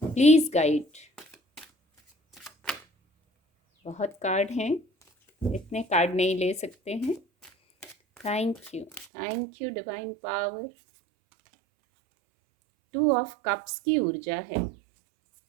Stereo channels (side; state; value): left; drops out; at 9.1 s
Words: please guide. बहुत कार्ड हैं, इतने कार्ड नहीं ले सकते हैं। Thank you divine power. 2 of cups की ऊर्जा है।